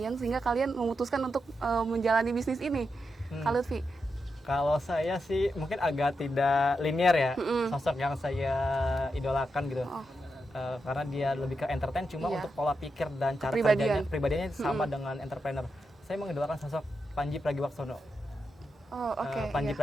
sehingga kalian memutuskan untuk menjalani bisnis ini? Kak Lutfi? Kalau saya sih mungkin agak tidak linear ya, sosok yang saya idolakan gitu. Oh. Karena dia lebih ke entertain, cuma Iya. untuk pola pikir dan cara Kepribadian. pribadiannya sama dengan entrepreneur. Saya mengidolakan sosok Panji Pragiwaksono. Oh oke. Panji iya.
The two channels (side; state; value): both; normal; correlation 0.86